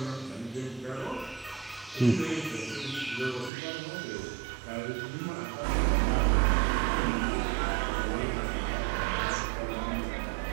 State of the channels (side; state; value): left; drops out; at 3.5 s